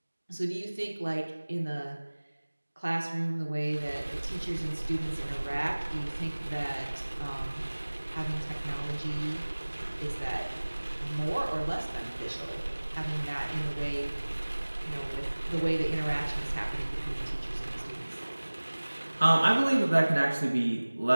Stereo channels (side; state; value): both; inverted; correlation -1.00